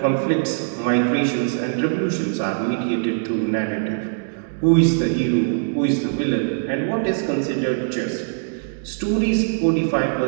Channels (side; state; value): left; silent; digital silence